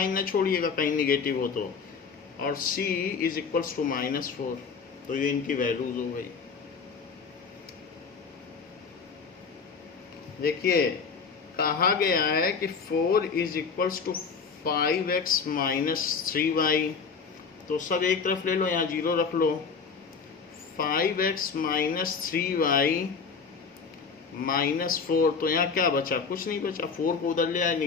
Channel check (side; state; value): right; quieter; 5.5 dB